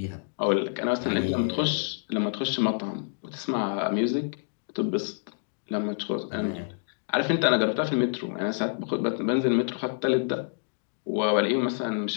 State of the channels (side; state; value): right; silent; digital silence